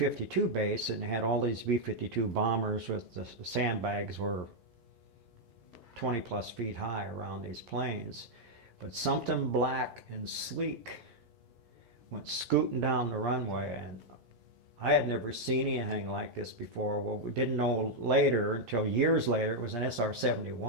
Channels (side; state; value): left; late; 11 ms